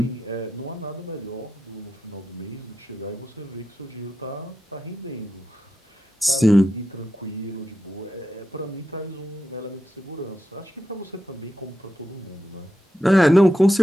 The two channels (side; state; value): both; normal; correlation 0.87